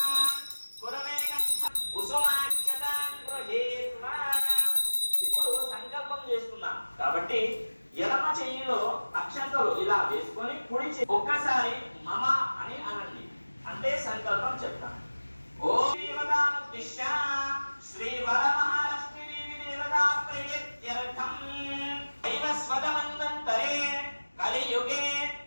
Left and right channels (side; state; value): both; inverted; correlation -1.00